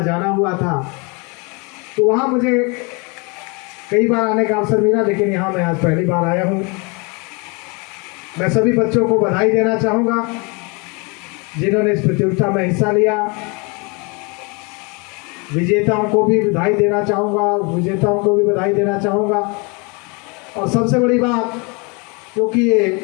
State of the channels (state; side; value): quieter; right; 30.7 dB